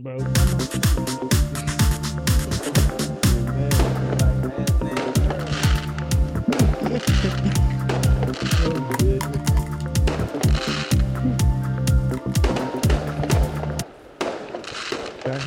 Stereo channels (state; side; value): identical; both; correlation 1.00